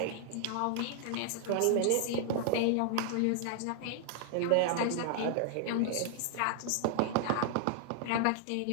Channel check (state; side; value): different; both; correlation 0.00